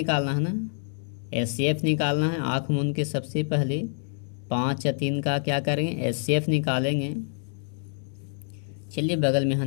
है ना। एचसीएफ निकालना है। आँख मूंद के सबसे पहले 5 या 3 का क्या करेंगे, एचसीएफ निकालेंगे। चलिए बगल में यहाँ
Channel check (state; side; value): silent; right; digital silence